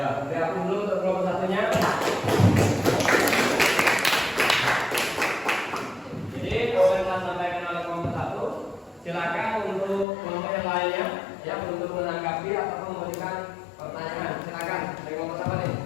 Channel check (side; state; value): right; drops out; at 10.1 s